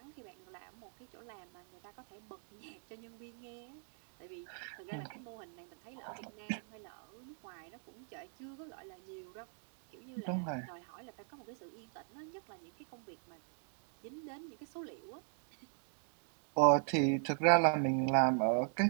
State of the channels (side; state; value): left; silent; 51 dB below the other